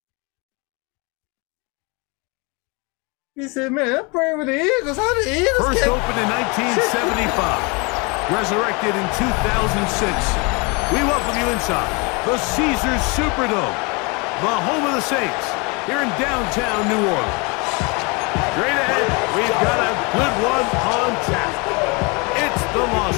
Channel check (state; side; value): quieter; right; 29.7 dB